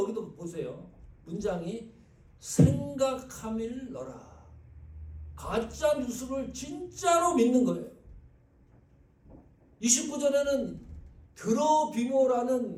보세요. 문장이 생각함일러라. 가짜 뉴스를 진짜로 믿는 거예요. 29절에는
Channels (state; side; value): identical; both; correlation 1.00